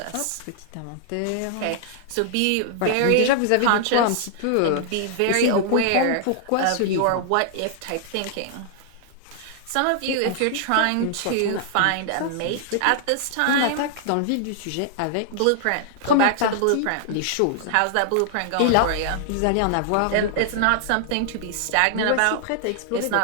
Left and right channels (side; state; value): both; different; correlation -0.01